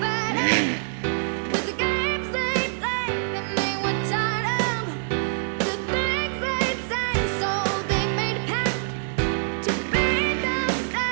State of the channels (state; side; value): silent; left; digital silence